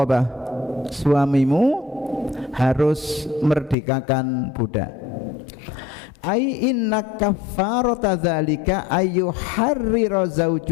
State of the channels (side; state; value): right; drops out; at 3.8 s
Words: suamimu harus merdekakan budak. Ai inna kaffarata dzalika ayyuharrira